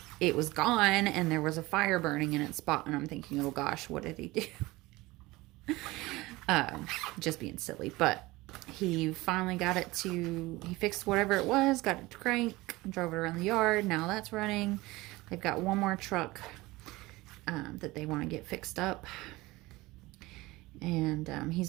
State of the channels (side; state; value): left; quieter; 20.5 dB